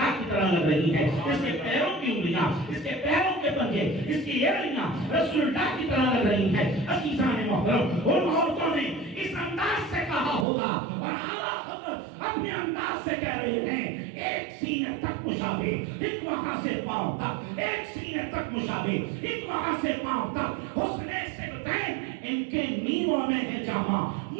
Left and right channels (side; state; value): left; drops out; at 10.5 s